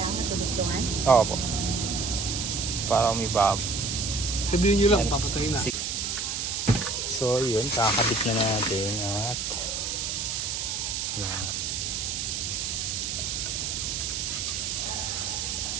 Matulugtungan? Oo po. Para umibab. Sabihin nyo lang, papatayin na. So yun, kakabit na natin at yan.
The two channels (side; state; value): right; noise; hiss, 2 dB below the sound